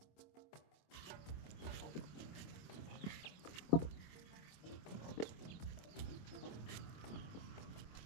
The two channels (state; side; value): late; right; 26 ms